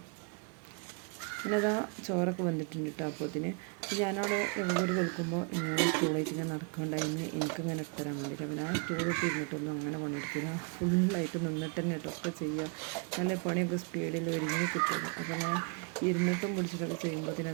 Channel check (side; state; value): left; quieter; 35.7 dB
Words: പിന്നെ അതാ ചോറൊക്കെ വന്നിട്ടുണ്ട് കേട്ടോ. അപ്പോൾ അതിന് ഞാനവിടെ ഒരു വെളുക്കുമ്പോൾ ഇങ്ങനെ സ്റ്റൂളായിട്ട് ഇങ്ങനെ നടക്കണ്ടായിരുന്നു. എനിക്കിങ്ങനെ ഇട്ടരാൻ വേണ്ടിയിട്ട്. അപ്പോൾ ഞാൻ സ്റ്റൂളിട്ട് ഇരുന്നിട്ടൊന്നും അങ്ങനെ പണിയെടുക്കില്ല. ഫുള്ളായിട്ട് നിന്നിട്ട് തന്നെ ഇട്ടൊക്കെ ചെയ്യുക. നല്ല പണിയൊക്കെ സ്പീഡിൽ ഒരുങ്ങി കിട്ടുള്ളൂ. അപ്പോൾ ഞാൻ ഇരുന്നിട്ടും പിടിച്ചിട്ടൊക്കെ ചെയ്യുമ്പോൾ പിന്നെ